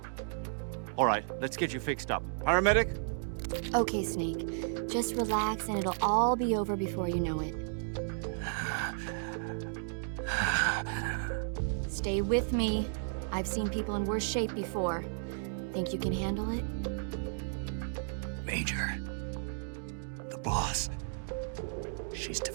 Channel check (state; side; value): silent; left; digital silence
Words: All right, let's get you fixed up. Paramedic? Okay, Snake. Just relax and it'll all be over before you know it. Stay with me. I've seen people in worse shape before. Think you can handle it? Major. The boss. She's